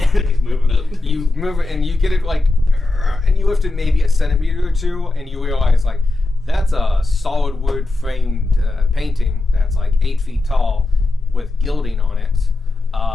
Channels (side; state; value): right; quieter; 3.0 dB